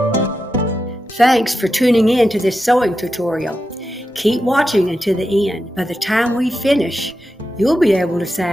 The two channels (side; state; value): both; normal; correlation 0.89